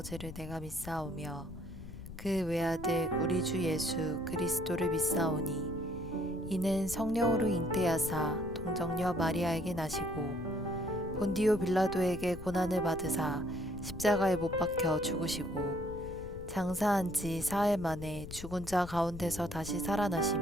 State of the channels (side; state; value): left; noise; rumble, 12 dB below the sound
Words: 내가 믿사오며 그 외아들 우리 주 예수 그리스도를 믿사오니 이는 성령으로 잉태하사 동정녀 마리아에게 나시고 본디오 빌라도에게 고난을 받으사 십자가에 못 박혀 죽으시고 장사한 지 사흘 만에 죽은 자 가운데서 다시